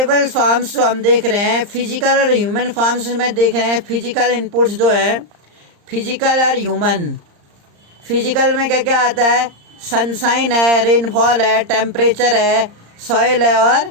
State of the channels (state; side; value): late; left; 34 ms